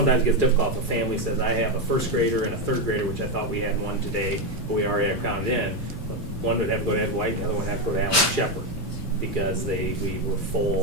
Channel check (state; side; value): normal; both; correlation 0.08